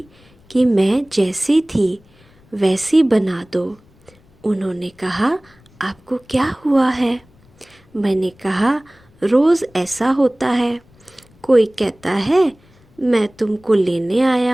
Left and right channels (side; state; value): left; noise; rumble, 30 dB below the sound